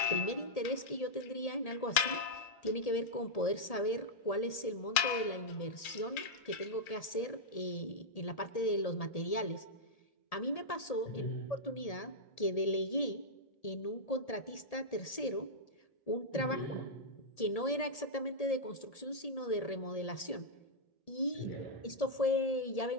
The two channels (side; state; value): right; late; 1.8 ms